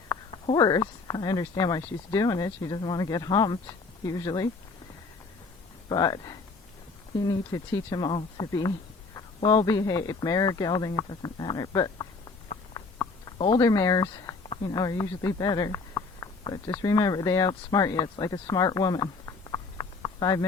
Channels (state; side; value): quieter; right; 4.1 dB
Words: horse. I understand why she's doing it. She doesn't want to get humped usually, but you need to teach them all to be well behaved. Mare or gelding, it doesn't matter. But older mares, you know, are usually better. But just remember, they outsmart you. It's like a smart woman. 5